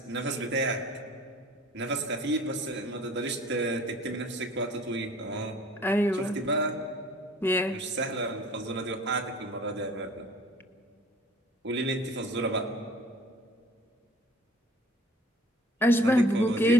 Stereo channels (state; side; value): normal; both; correlation 0.50